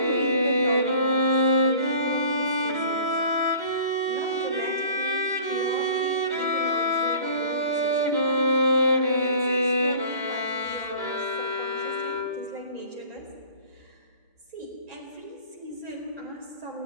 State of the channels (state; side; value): inverted; both; correlation -0.46